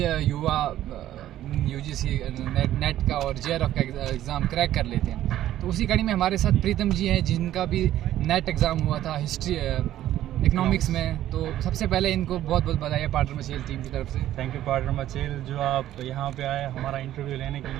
युवा यूजीसी नेट का और जेआरएफ का एग्ज़ाम क्रैक कर लेते हैं। तो उसी कड़ी में हमारे साथ प्रीतम जी हैं जिनका भी नेट एग्ज़ाम हुआ था हिस्ट्री इकोनॉमिक्स में। तो सबसे पहले इनको बहुत बहुत बधाई है पार्डर मचेल टीम की तरफ से। थैंक यू पार्डर मचेल, जो आप यहाँ पे आए हमारा इंटरव्यू लेने के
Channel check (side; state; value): left; quieter; 12.9 dB